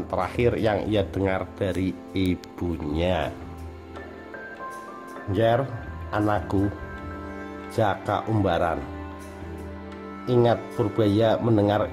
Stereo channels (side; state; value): both; identical; correlation 1.00